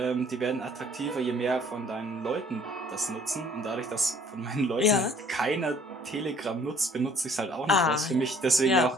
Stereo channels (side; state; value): both; normal; correlation 0.58